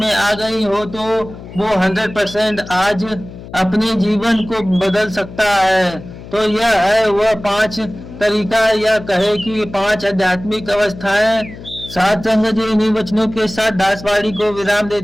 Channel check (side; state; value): left; noise; hum, 15 dB below the sound